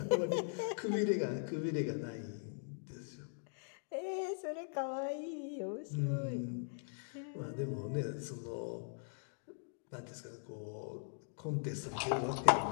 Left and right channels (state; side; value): silent; right; digital silence